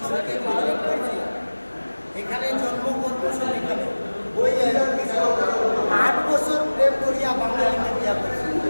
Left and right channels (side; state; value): both; inverted; correlation -1.00